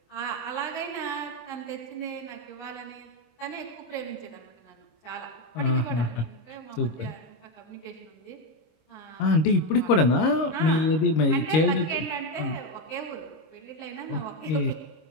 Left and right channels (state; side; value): late; right; 26 ms